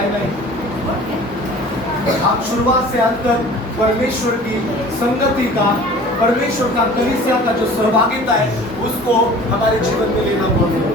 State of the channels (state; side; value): normal; both; correlation 0.45